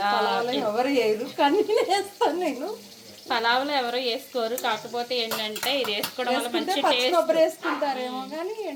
ఎవరు వేయరు కానీ వేస్తాను నేను. పలావులో ఎవరు వేసుకోరు, కాకపోతే ఏంటంటే ఇది వేసుకోవడం వల్ల మంచి టేస్ట్. కొబ్బరి వేసుకుంటారేమో కానీ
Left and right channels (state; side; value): identical; both; correlation 1.00